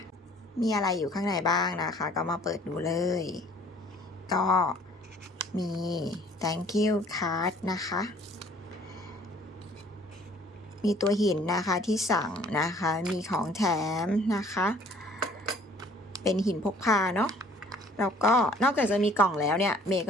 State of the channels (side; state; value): both; normal; correlation 0.56